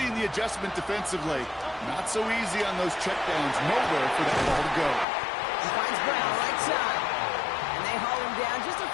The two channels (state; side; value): drops out; right; at 5.1 s